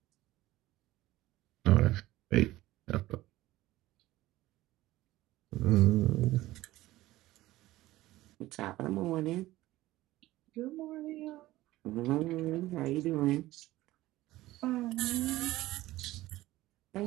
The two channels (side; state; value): left; quieter; 16.9 dB